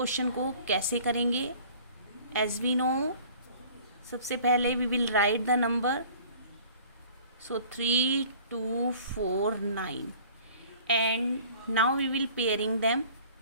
को कैसे करेंगे। एज वी नो, सबसे पहले we will write the number, so 3, 2, 4, 9 and now we will pairing them.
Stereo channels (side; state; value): both; inverted; correlation -0.49